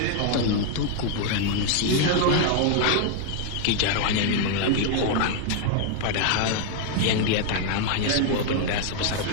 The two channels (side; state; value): both; different; correlation 0.00